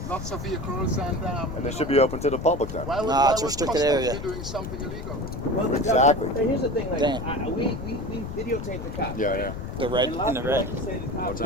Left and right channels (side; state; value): left; noise; rumble, 7 dB below the sound